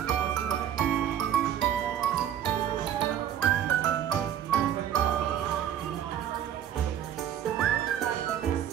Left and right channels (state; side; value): quieter; left; 10.2 dB